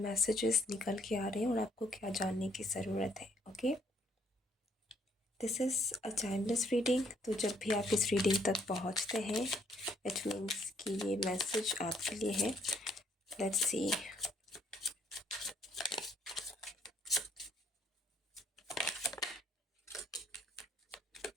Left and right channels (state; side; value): normal; both; correlation 0.66